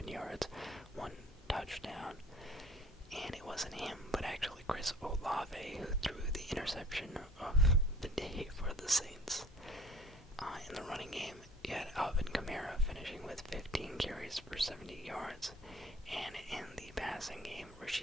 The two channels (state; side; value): normal; both; correlation 0.49